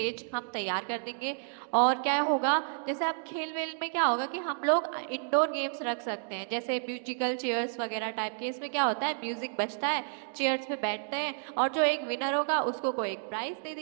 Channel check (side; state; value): left; silent; digital silence